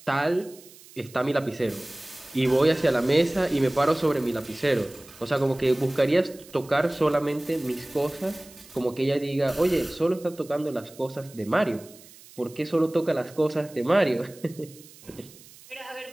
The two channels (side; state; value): right; noise; hiss, 22 dB below the sound